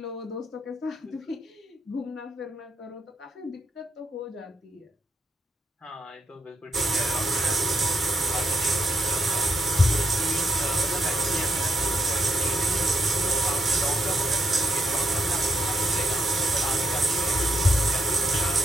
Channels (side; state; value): both; normal; correlation 0.80